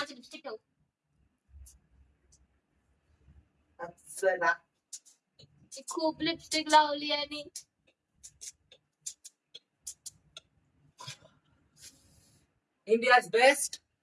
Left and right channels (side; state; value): both; identical; correlation 1.00